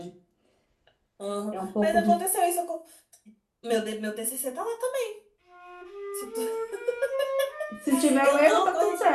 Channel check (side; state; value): both; identical; correlation 1.00